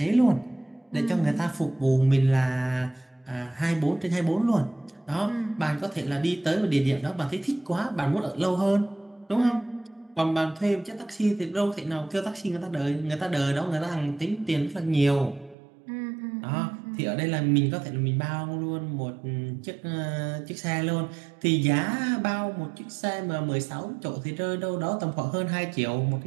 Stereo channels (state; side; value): drops out; left; at 15.6 s